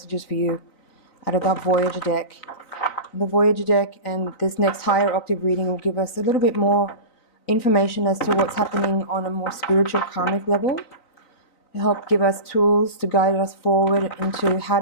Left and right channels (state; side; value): late; right; 3.9 ms